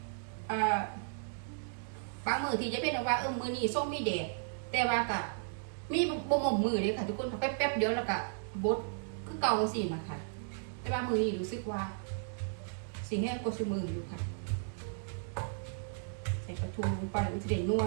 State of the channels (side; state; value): left; silent; digital silence